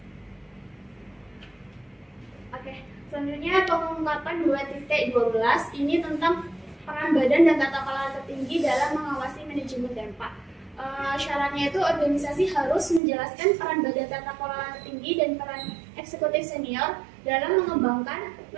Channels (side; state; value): left; drops out; at 13.0 s